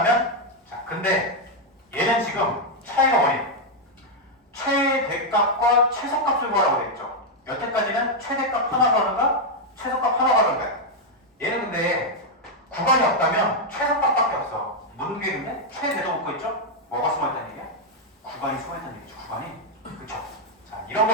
자, 근데 얘는 지금 차이가 뭐니? 최대값과 최소값을 구하라고 돼 있죠. 여태까지는 최대값 하나 가는가 최소값 하나 가는가. 얘는 근데 구간이 없다면 최소값밖에 없어. 묻는 게 있는데 최대도 붙고 있죠. 뭐가 숨어있다는 얘기야? 구간이 숨어있다는 얘기죠. 구간이. 그쵸? 자, 이런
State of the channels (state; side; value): normal; both; correlation 0.00